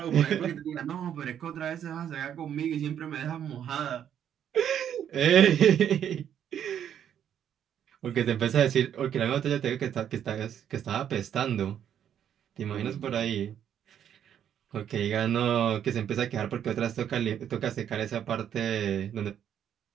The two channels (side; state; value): left; quieter; 9.5 dB